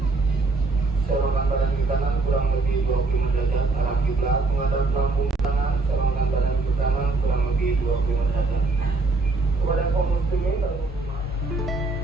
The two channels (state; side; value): quieter; left; 3.5 dB